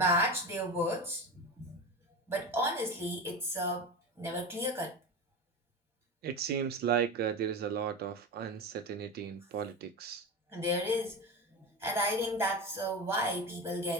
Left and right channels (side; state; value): both; normal; correlation 0.23